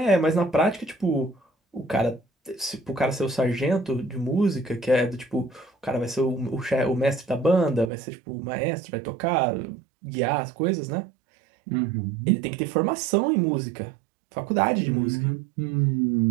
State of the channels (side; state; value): left; drops out; at 7.9 s